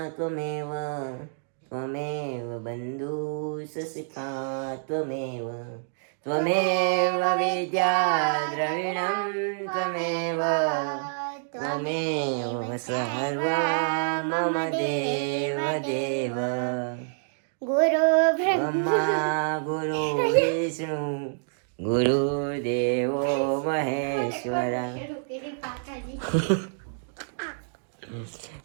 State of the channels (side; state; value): left; silent; digital silence